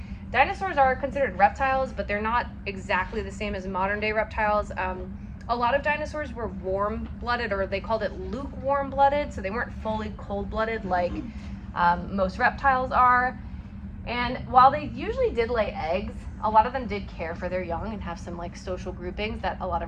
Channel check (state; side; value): identical; both; correlation 1.00